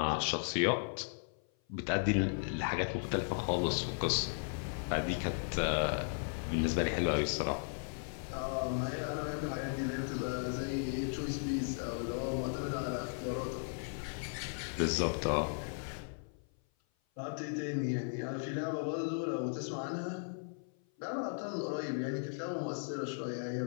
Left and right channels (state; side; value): silent; right; 54 dB below the other